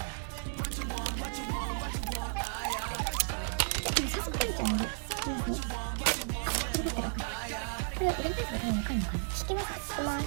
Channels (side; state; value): left; silent; digital silence